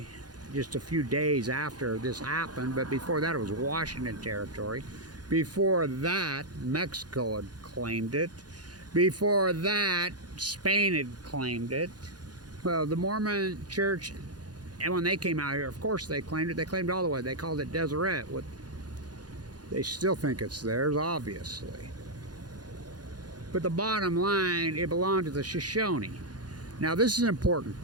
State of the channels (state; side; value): late; left; 0.69 ms